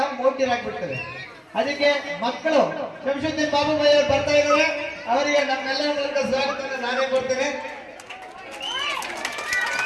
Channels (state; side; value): identical; both; correlation 1.00